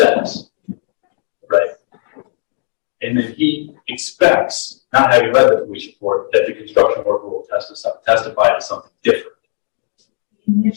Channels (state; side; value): silent; right; 59 dB below the other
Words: right? And then he expects, not having read the police report, that the construction worker will testify to something different.